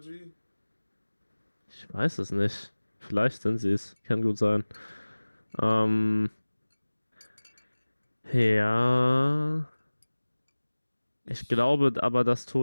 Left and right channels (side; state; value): both; inverted; correlation -1.00